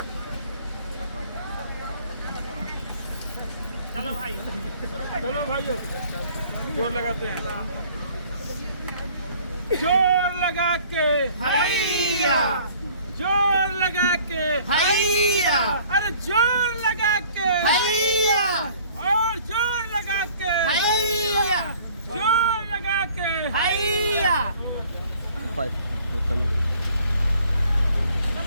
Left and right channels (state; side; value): inverted; both; correlation -0.54